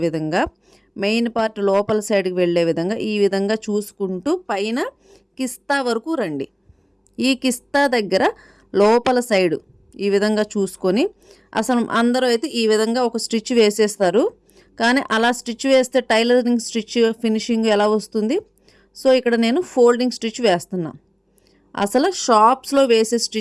విధంగా, మెయిన్ పార్ట్ లోపల సైడ్కి వెళ్ళే విధంగా ఈ విధంగా చూసుకుంటూ పైన కిస్తా వరకు రండి. ఈ కిస్తా దగ్గర లోపల సైడు ఈ విధంగా చూసుకొని, అసలు అందరూ అయితే ఈ విధంగా ఒక స్టిచ్ వేసేస్తారు, కానీ అలా స్టిచ్ వేస్తే టైలరింగ్ స్టిచ్ ఫినిషింగ్ ఎలా వస్తుంది? సో ఇక్కడ నేను ఫోల్డింగ్ స్టిచ్ వేస్తున్నా. అసలు షాప్స్లో వేసే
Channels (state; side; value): identical; both; correlation 1.00